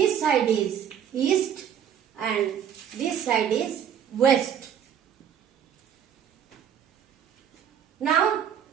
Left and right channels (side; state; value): left; quieter; 8.7 dB